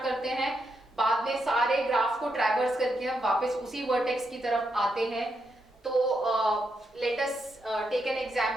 करते हैं, बाद में सारे ग्राफ को ट्रैवर्स करके हम वापस उसी वर्टेक्स की तरफ आते हैं। तो let us take an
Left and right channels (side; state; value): both; normal; correlation 0.82